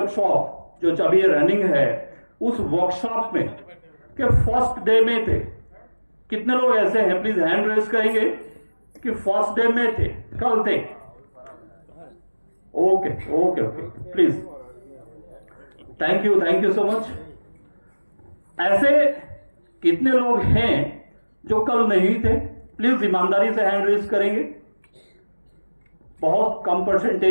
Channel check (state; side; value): inverted; both; correlation -1.00